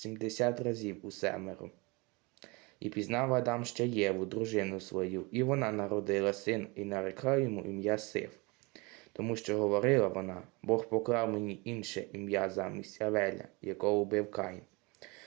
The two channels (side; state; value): left; quieter; 26.9 dB